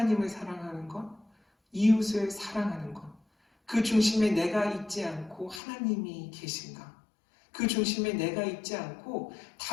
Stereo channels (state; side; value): drops out; right; at 5.6 s